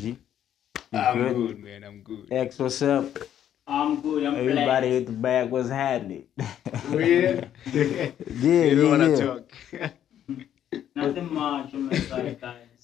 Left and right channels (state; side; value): quieter; right; 10.4 dB